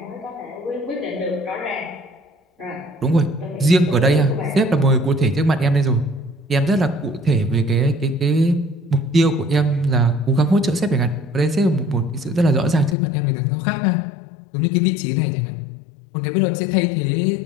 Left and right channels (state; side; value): drops out; right; at 13.0 s